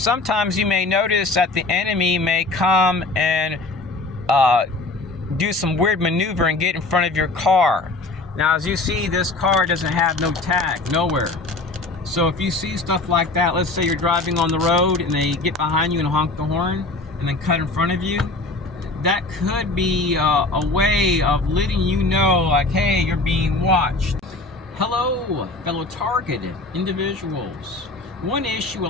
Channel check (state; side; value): quieter; right; 3.2 dB